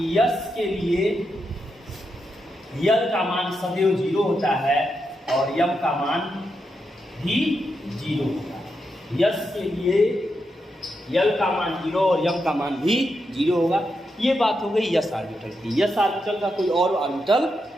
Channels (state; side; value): normal; both; correlation 0.84